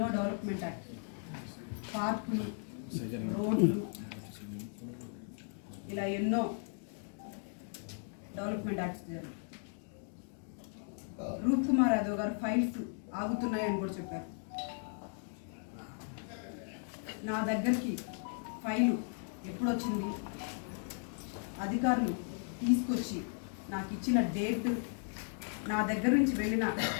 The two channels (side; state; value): right; silent; 54 dB below the other